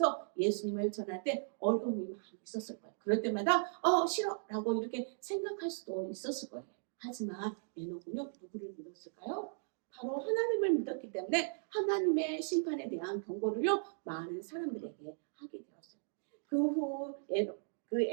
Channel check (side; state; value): left; silent; digital silence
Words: 예수님을 전할 때 어려움이 많이 있었을 거예요. 그럴 때마다, 싫어. 라고 이렇게 생각할 수도 있었을 거예요. 하지만 에녹은요, 누구를 믿었을까요? 바로 하나님을 믿었기 때문에 하나님의 심판에 대한 경고를요, 많은 사람들에게 하게 되었어요. 그 후